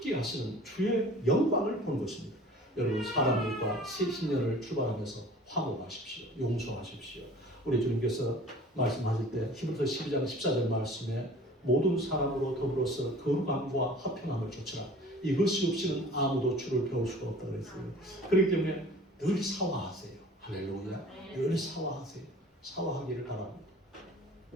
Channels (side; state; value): both; normal; correlation 0.46